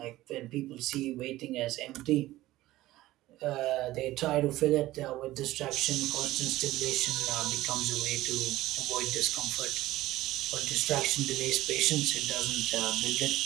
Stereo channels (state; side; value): quieter; left; 16.5 dB